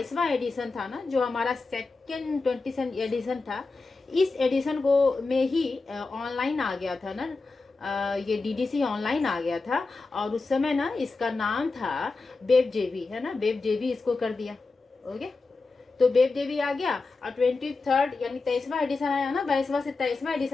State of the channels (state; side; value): quieter; right; 3.8 dB